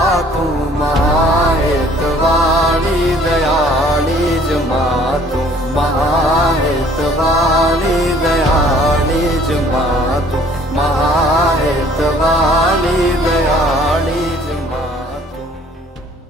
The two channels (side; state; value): both; normal; correlation 0.57